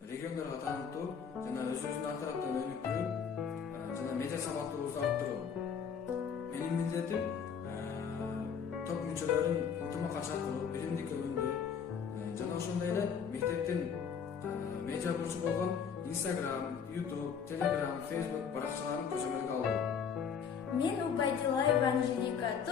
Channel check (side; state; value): right; quieter; 6.9 dB